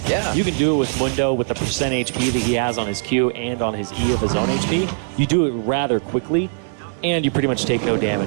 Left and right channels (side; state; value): left; silent; digital silence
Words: Yeah. You can do it with Mundo with the percent HP that he has on his Q and on his E of his own HP. You do it rather quickly, and you pretty much take no